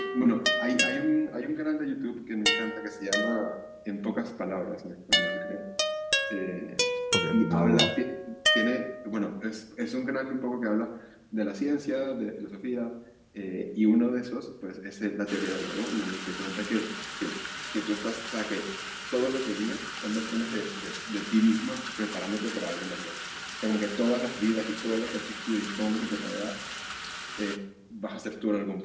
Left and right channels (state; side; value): identical; both; correlation 1.00